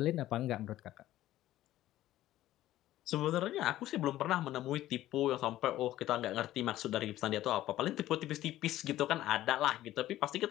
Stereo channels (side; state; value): right; quieter; 14.4 dB